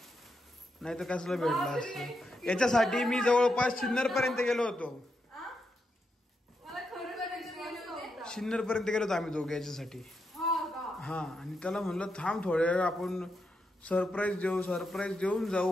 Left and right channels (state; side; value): normal; both; correlation 0.84